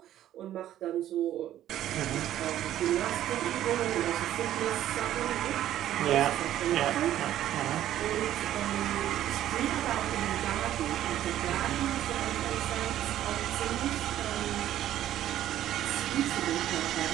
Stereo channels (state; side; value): quieter; left; 12.3 dB